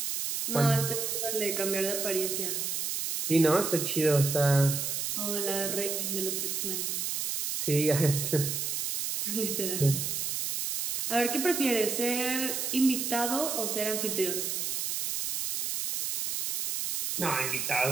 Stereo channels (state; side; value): noise; right; hiss, 2 dB below the sound